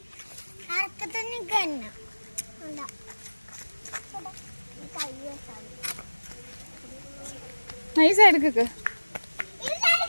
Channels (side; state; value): both; inverted; correlation -1.00